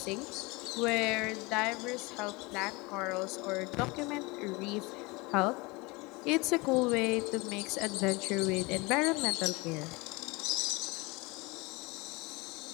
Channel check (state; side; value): quieter; right; 25.3 dB